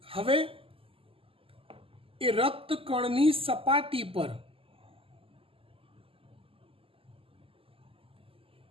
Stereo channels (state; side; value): late; left; 0.26 ms